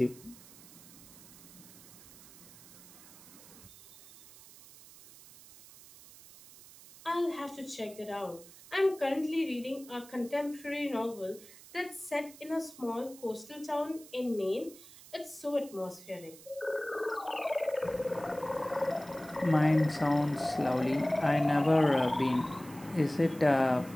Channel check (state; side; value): noise; right; hiss, 20 dB below the sound